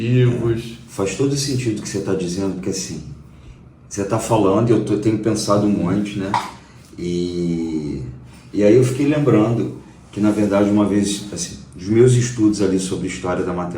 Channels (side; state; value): both; identical; correlation 1.00